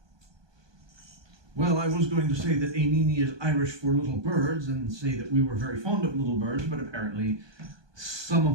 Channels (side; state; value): left; late; 1.2 ms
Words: Well, I was going to say that Einini is Irish for little birds and say that we were very fond of little birds, but apparently some